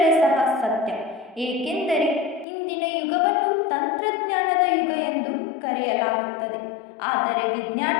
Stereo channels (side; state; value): right; drops out; at 2.5 s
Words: ಸತ್ಯ. ಏಕೆಂದರೆ ಇಂದಿನ ಯುಗವನ್ನು ತಂತ್ರಜ್ಞಾನದ ಯುಗ ಎಂದು ಕರೆಯಲಾಗುತ್ತದೆ. ಆದರೆ ವಿಜ್ಞಾನ